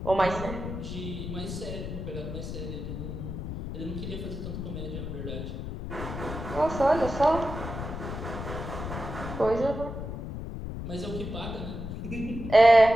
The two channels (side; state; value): left; noise; rumble, 6 dB below the sound